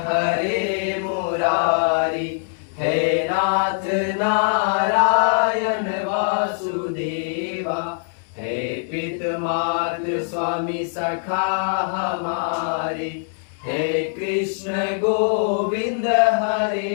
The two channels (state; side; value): silent; right; 63 dB below the other